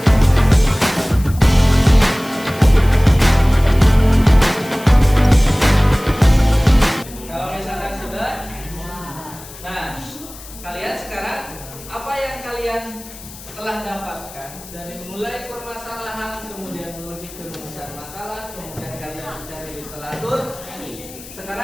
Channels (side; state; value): left; noise; hiss, 17 dB below the sound